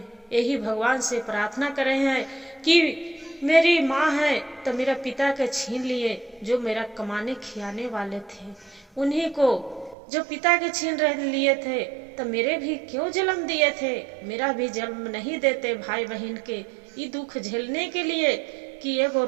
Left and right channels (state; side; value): drops out; left; at 10.0 s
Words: यही भगवान से प्रार्थना कर रहे हैं कि मेरी माँ है तो मेरा पिता के छीन लिए, जो मेरा कमाने खियाने वाले थे, उन्हीं को जो पिता के छीन लिए थे तो मेरे भी क्यों जन्म दिए थे, मेरा भी जन्म नहीं देते भाई बहन के ये दुख झेलने के लिए कि एगो